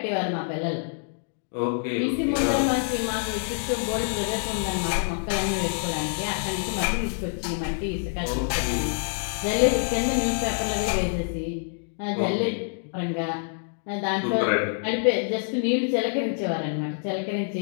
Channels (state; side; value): silent; right; digital silence